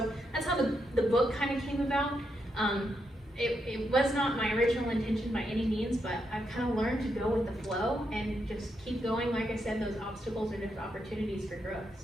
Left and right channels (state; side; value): normal; both; correlation 0.81